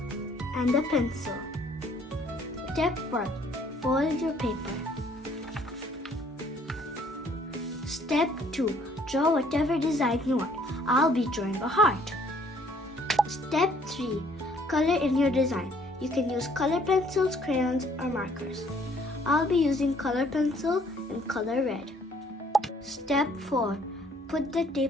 and a pencil. Step 1. Fold your paper. Step 2. Draw whatever design you want. I'll be drawing a heart. Step 3. Color in your design. You can use color pencils, crayons, or markers. I'll be using color pencil and color red. Step 4. Put the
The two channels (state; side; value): normal; both; correlation 0.61